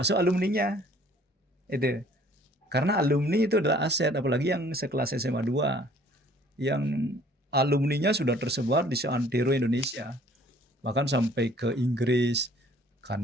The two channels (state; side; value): normal; both; correlation 0.56